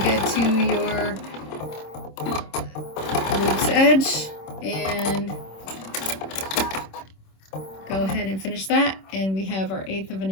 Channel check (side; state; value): right; late; 26 ms